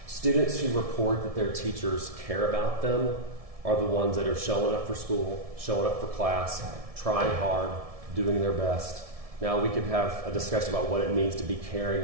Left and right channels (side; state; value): left; late; 1.7 ms